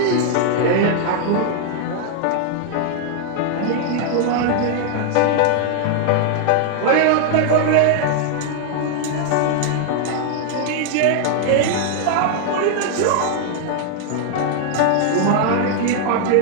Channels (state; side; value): different; both; correlation 0.00